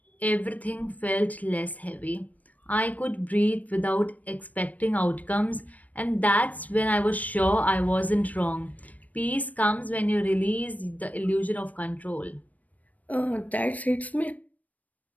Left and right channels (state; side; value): late; right; 0.073 ms